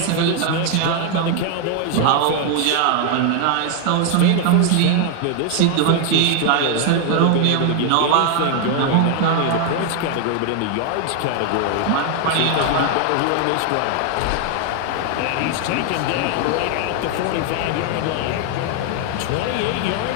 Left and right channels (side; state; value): both; different; correlation 0.01